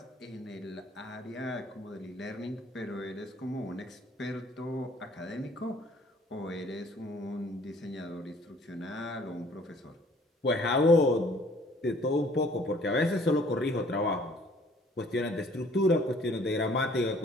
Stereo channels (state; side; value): normal; both; correlation 0.57